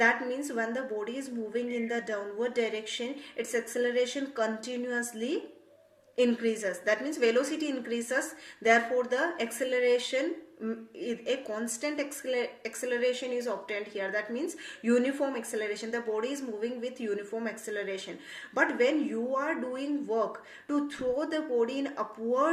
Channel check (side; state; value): both; identical; correlation 1.00